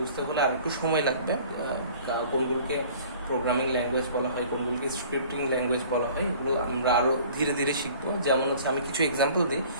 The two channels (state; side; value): inverted; both; correlation -0.49